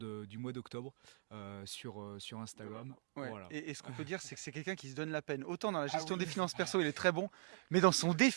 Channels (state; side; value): silent; left; digital silence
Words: mois d'octobre sur Instagram. Ouais. Voilà. Et ce qu'on peut dire, c'est que c'est quelqu'un qui se donne la peine. Autant dans la gestion des finances perso, il est très bon, mais dans son